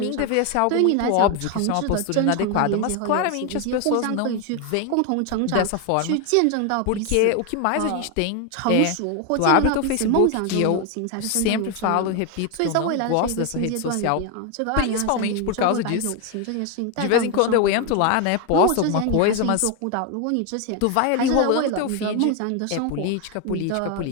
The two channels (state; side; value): different; both; correlation 0.01